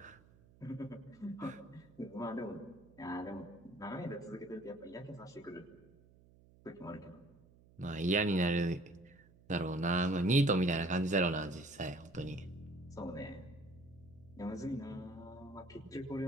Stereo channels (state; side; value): noise; right; hum, 26 dB below the sound